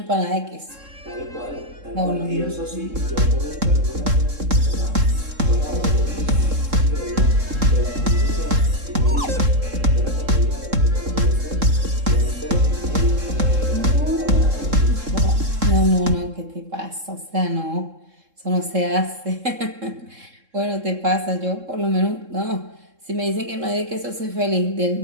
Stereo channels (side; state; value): left; late; 3.7 ms